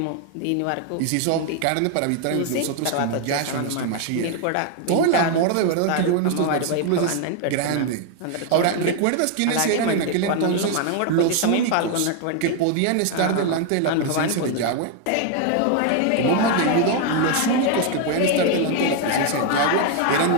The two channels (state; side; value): different; both; correlation 0.01